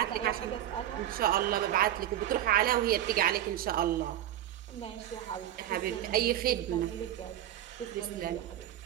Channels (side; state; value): left; quieter; 12.2 dB